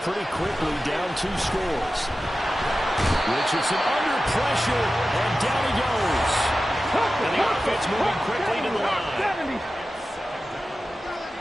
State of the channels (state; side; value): normal; both; correlation 0.94